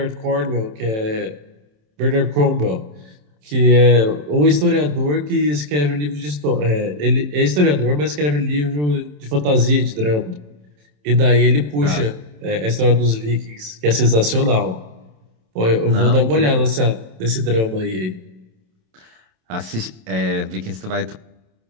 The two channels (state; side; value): late; left; 27 ms